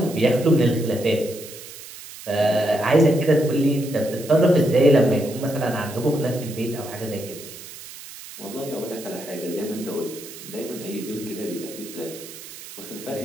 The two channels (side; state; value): right; noise; hiss, 15 dB below the sound